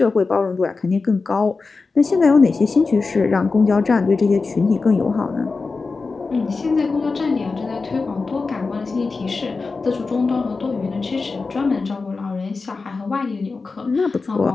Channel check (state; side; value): quieter; right; 4.2 dB